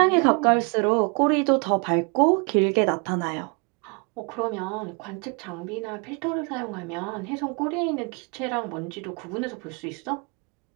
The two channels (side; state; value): left; quieter; 33.9 dB